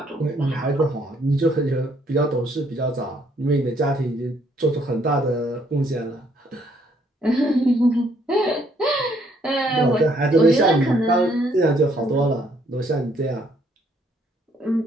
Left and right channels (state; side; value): normal; both; correlation 0.67